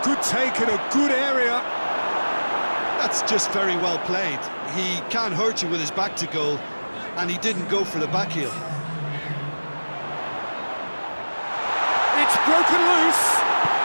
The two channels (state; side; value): inverted; both; correlation -1.00